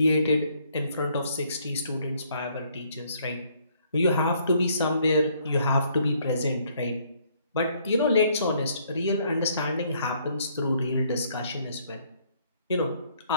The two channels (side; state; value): both; inverted; correlation -0.66